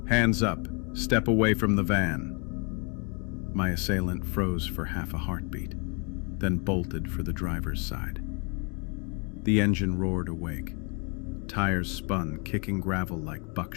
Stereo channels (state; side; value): quieter; right; 34.5 dB